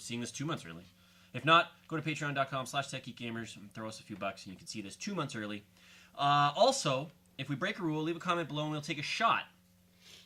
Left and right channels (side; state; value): both; identical; correlation 1.00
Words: this 2 months early. If not, go to patreon.com/techgeekgamers and throw us a few bucks and you can see this 2 months early. Also, if we break a rule, leave a comment below and we'll take a shot.